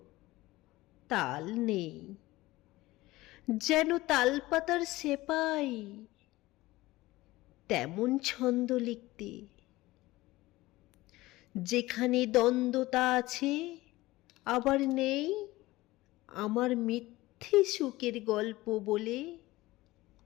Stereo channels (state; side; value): quieter; right; 18.8 dB